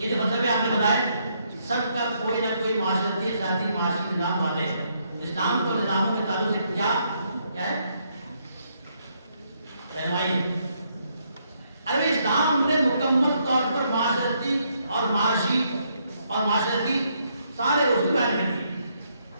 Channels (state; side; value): inverted; both; correlation -0.74